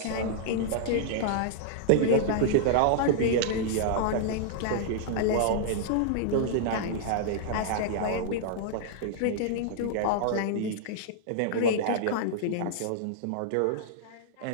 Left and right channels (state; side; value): different; both; correlation -0.02